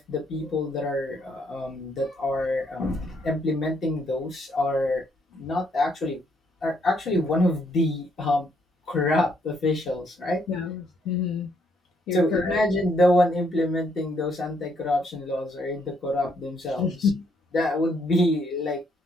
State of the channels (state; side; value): normal; both; correlation 0.71